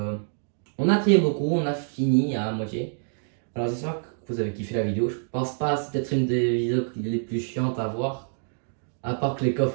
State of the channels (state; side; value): silent; left; digital silence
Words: On a trié beaucoup, on a fini à moitié. Alors j'espère que que vous avez kiffé la vidéo. Je pense pas, c'est peut-être une des vidéos les plus chiantes à voir. À part que les